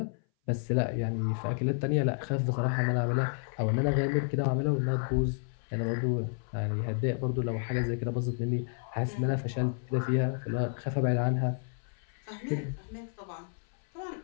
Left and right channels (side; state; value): right; silent; 57 dB below the other